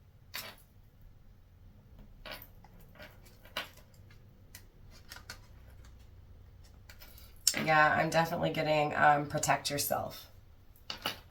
Yeah, I'm definitely getting protect yourself.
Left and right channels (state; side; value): identical; both; correlation 1.00